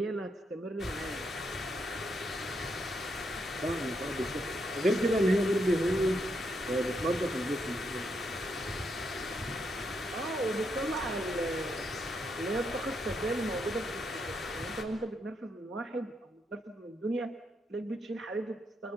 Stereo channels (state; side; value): normal; both; correlation 0.79